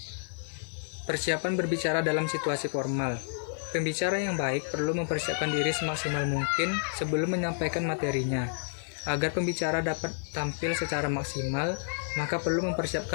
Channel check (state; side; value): silent; right; digital silence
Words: Persiapan berbicara dalam situasi formal. Pembicara yang baik perlu mempersiapkan diri semaksimal mungkin sebelum menyampaikan materinya. Agar pembicara dapat tampil secara maksimal, maka perlu